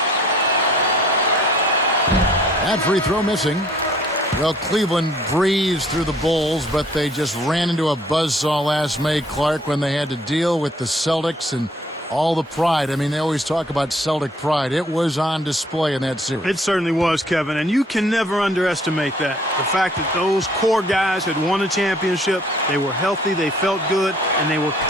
That free throw missing. Well, Cleveland breezed through the Bulls, but they just ran into a buzzsaw last May, Clark, when they had to deal with the Celtics and all the pride. I mean, they always talk about Celtic pride. It was on display in that series. It certainly was, Kevin, and you can never underestimate that. The fact that those core guys had won a championship, they were healthy, they felt good, and they were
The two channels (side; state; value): both; normal; correlation 0.59